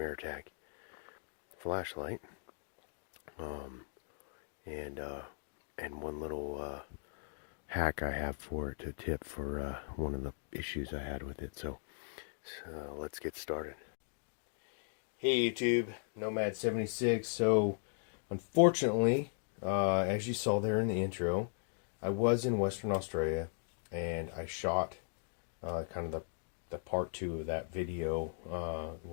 flashlight. Um, and one little hack I have for it, a tip for one of the issues I had with it. So let's get started. Hey YouTube, Nomad76. So unfortunately, as you saw there in the intro, I was in Western Australia and I shot kind of the part 2 of that video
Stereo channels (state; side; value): silent; right; digital silence